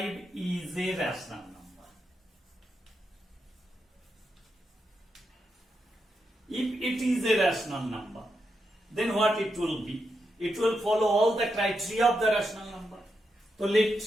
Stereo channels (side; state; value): both; normal; correlation 0.85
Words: is a rational number. If it is a rational number, then what it will be? It will follow all the criteria of the rational number. So